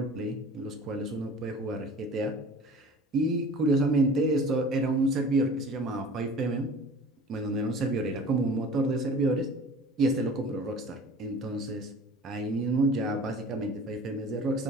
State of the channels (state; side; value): normal; both; correlation 0.43